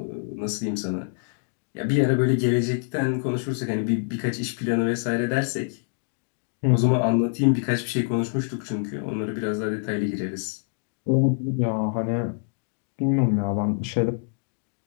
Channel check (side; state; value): right; silent; 60 dB below the other